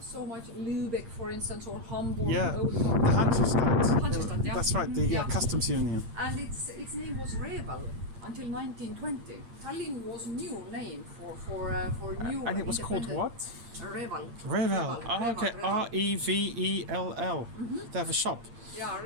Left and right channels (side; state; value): left; late; 8.7 ms